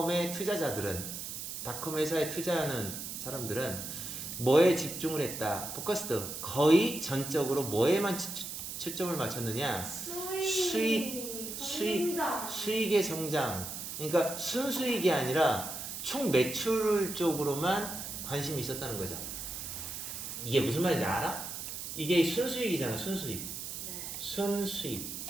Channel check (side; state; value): right; noise; hiss, 7 dB below the sound